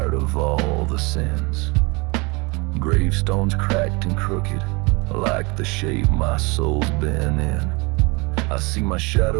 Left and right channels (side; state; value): left; quieter; 27.5 dB